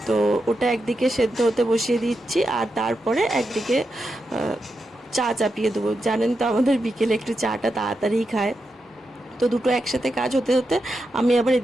তো ওটা একদিকে সেদ্ধ হতে বসিয়ে দিচ্ছি, আর তারপরে একদিকে চা চাপিয়ে দেবো। জানেন তো আমাদের বিকেলে একটু চাটা তাড়াতাড়ি খায়। তো দুটো একসাথে কাজ হতে হতে আমি আবার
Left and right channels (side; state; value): both; normal; correlation 0.87